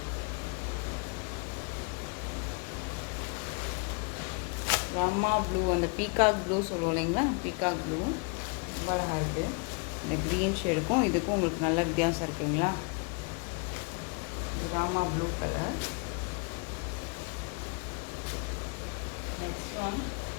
ரம்மா ப்ளூ, அந்த பீகாக் ப்ளூ சொல்லுவோம் இல்லைங்களா, பீகாக் ப்ளூ ரொம்ப அழகாக இருக்குது. இந்த க்ரீன் ஷேடுக்கும் இதுக்கும் உங்களுக்கு நல்ல வித்தியாசம் இருக்குங்களா. Rama blue colour. Next one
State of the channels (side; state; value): right; quieter; 32.6 dB